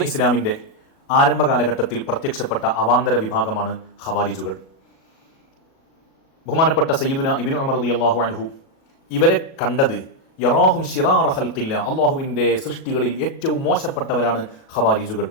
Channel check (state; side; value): late; right; 37 ms